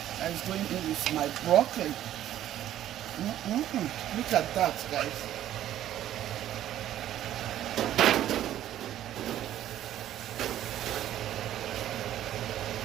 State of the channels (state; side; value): quieter; left; 12.2 dB